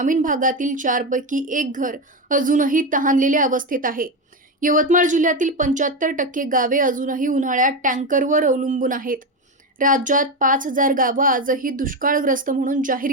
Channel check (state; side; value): normal; both; correlation 0.14